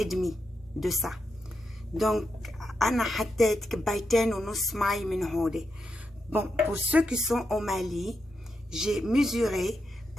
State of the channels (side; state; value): both; normal; correlation 0.85